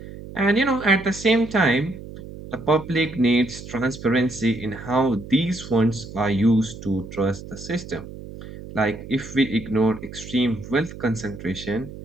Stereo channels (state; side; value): noise; right; hum, 13 dB below the sound